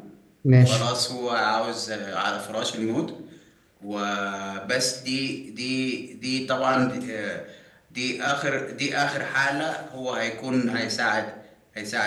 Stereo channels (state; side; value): identical; both; correlation 1.00